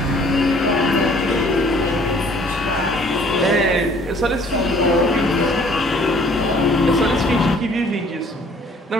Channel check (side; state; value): both; normal; correlation 0.57